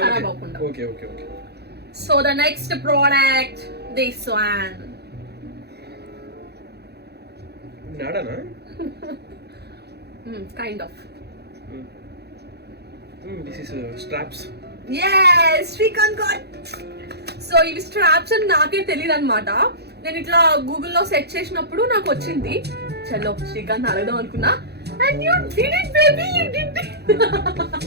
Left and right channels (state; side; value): late; left; 0.48 ms